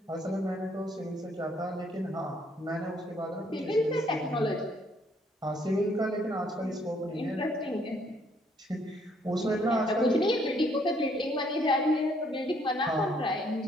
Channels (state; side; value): normal; both; correlation 0.67